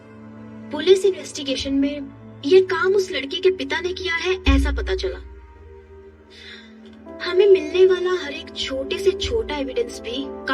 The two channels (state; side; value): identical; both; correlation 1.00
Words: पुलिस इन्वेस्टिगेशन में ये काम उस लड़की के पिता ने किया है, ऐसा पता चला। हमें मिलने वाला हर एक छोटे से छोटा एविडेंस भी